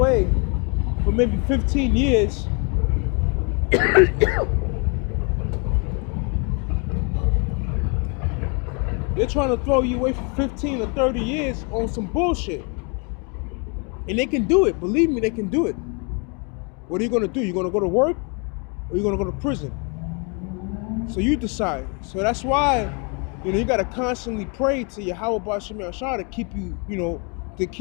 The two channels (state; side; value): quieter; right; 34.6 dB